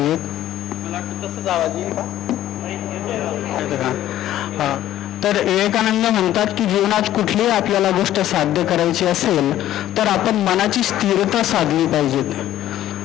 तर विवेकानंद म्हणतात की जीवनात कुठलीही आपल्याला गोष्ट साध्य करायची असेल तर आपण मनाची स्थिरता साधली पाहिजेत.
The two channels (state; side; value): quieter; right; 13.0 dB